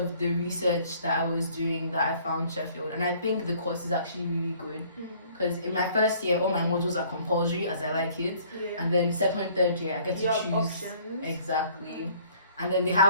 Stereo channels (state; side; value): inverted; both; correlation -0.57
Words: the research that I was doing that I found Sheffield, and I think the course is actually really good because in my first year all my modules are compulsory as I like it, and then second, third year I get to choose options. Exactly, and then they